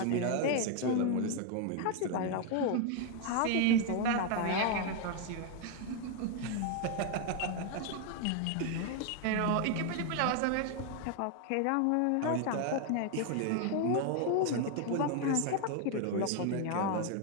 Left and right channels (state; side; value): different; both; correlation 0.01